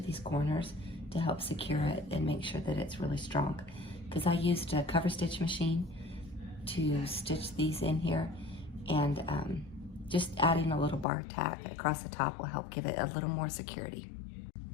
these corners to help secure it and make sure that it's really strong. Because I used a cover stitch machine to stitch these in here, and just adding a little bar tack across the top will help give it a little more security.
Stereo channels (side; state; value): right; drops out; at 11.1 s